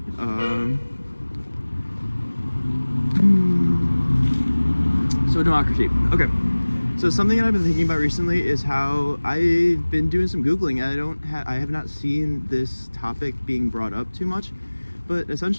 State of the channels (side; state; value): both; inverted; correlation -1.00